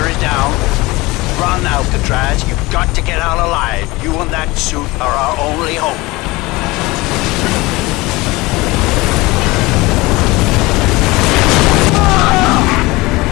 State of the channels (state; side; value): quieter; right; 21.9 dB